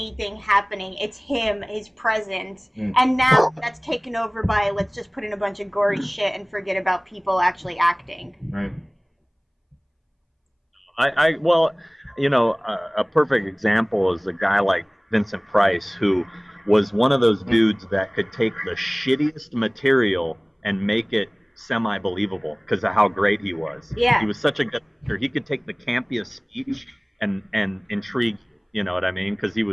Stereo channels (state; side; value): identical; both; correlation 1.00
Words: happening. It's him, his presence. And now that's taken over by, let's just put in a bunch of gory shit and forget about people actually acting. Right. Well, you know, a perfect example is a guy like Vincent Price, who was one of those dudes that could take the shittiest material and make it semi-believable because of how great he was. Yeah. He was such a good actor. He could take the campiest speech and intrigue, you know what I mean? Because he